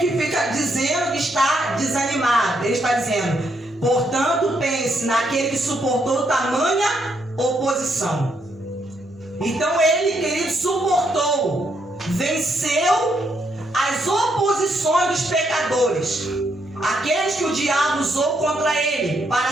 fica dizendo que está desanimado. Ele está dizendo, portanto, pense naquele que suportou tamanha oposição. Então ele, querido, suportou, venceu as oposições dos pecadores, aqueles que o diabo usou contra ele para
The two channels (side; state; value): both; normal; correlation 0.76